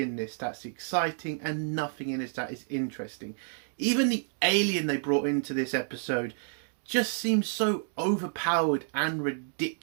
this that's exciting and nothing in this that is interesting. Even the alien they brought into this episode just seems so overpowered and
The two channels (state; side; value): silent; left; digital silence